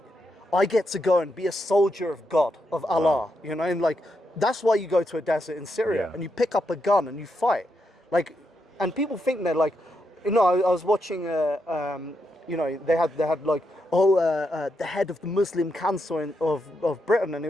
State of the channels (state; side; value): normal; both; correlation 0.82